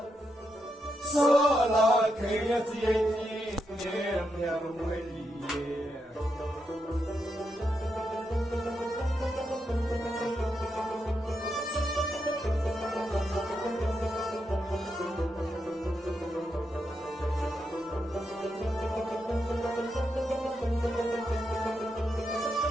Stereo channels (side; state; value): both; normal; correlation 0.83